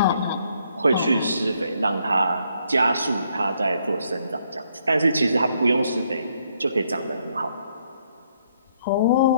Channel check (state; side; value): inverted; both; correlation -0.71